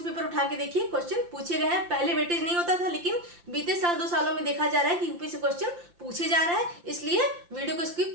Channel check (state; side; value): late; left; 5.8 ms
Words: पेपर उठा के देखिए, क्वेश्चन पूछे गए हैं। पहले वेटेज नहीं होता था, लेकिन बीते साल 2 सालों में देखा जा रहा है कि यूपी से क्वेश्चन पूछे जा रहा है। इसलिए वीडियो को